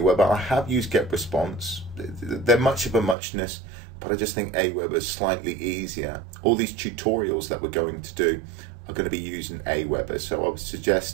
I have used Get Response. They're much of a muchness, but I just think Aweber is slightly easier. All these tutorials that we're going to do are going to be using Aweber, so I would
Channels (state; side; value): drops out; left; at 3.2 s